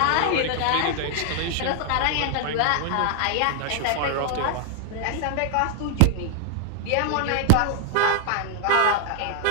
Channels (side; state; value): both; different; correlation 0.00